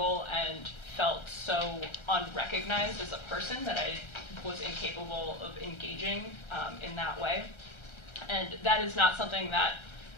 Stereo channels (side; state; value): right; late; 1.3 ms